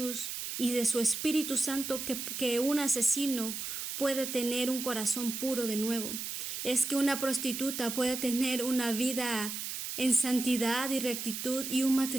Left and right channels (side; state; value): right; noise; hiss, 5 dB below the sound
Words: y de su Espíritu Santo que un asesino puede tener un corazón puro de nuevo. Es que una prostituta puede tener una vida en santidad y rectitud y un